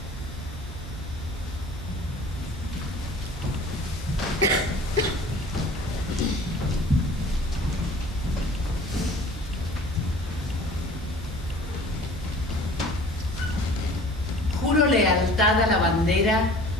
Juro lealtad a la bandera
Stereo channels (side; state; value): both; normal; correlation 0.46